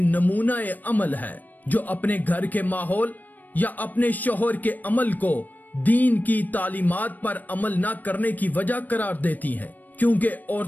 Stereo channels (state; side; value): late; right; 0.085 ms